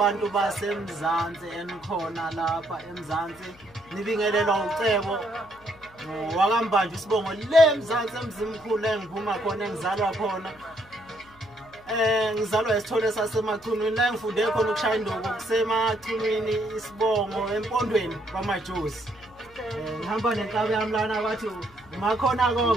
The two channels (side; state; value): left; noise; hum, 26 dB below the sound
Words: baseMzansi enikhona lapha eMzansi. Nibingelelwa ucebo wakambanje isibongo le eMzansi emzimkhulu engiphuma khona engizalwa khona. Ngizalwa esithole sasemachunwini la ngifunde khona ukushaya induku kusemachunwini isibongo empondweni kwamajosi. Ngihamba nenkabi yami lana bathi makhona